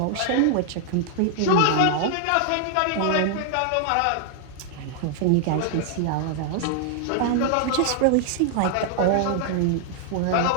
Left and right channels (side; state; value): both; different; correlation 0.00